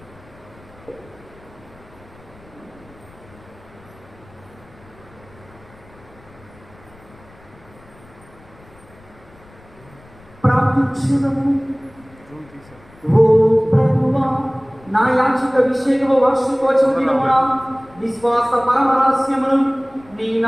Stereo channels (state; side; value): noise; left; rumble, 25 dB below the sound